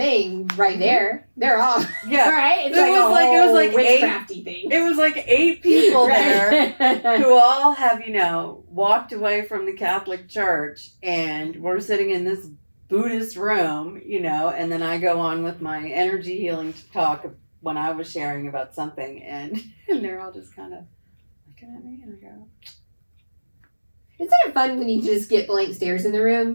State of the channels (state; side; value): inverted; both; correlation -1.00